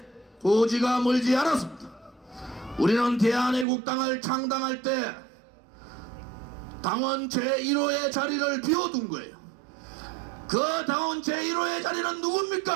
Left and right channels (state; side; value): drops out; left; at 3.7 s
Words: 고지가 멀지 않았습니다. 우리는 대한애국당을 창당할 때 당원 제1호의 자리를 비워둔 거예요. 그 당원 제1호의 자리는